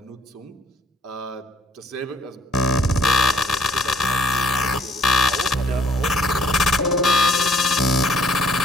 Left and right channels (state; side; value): normal; both; correlation 0.60